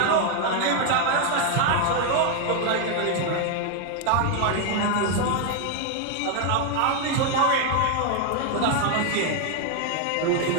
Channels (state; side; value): different; both; correlation 0.01